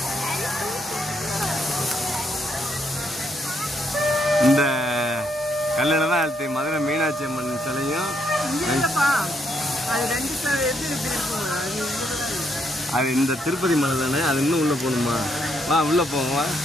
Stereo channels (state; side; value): normal; both; correlation 0.74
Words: இந்த கல்லில் தான் அழுத்தி மதுரை மீனாட்சி அம்மன் சிலையும். அது இந்த திருப்பதி மலை தானே. அது இன்னும் உள்ள போகணுமா? வா உள்ள போவோம். வா